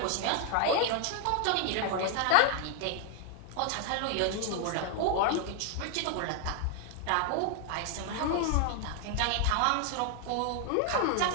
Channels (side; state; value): both; different; correlation 0.00